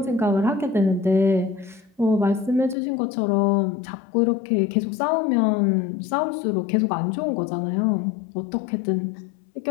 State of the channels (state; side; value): drops out; right; at 2.8 s